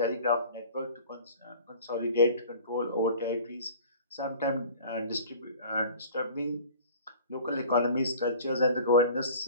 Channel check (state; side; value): inverted; both; correlation -0.45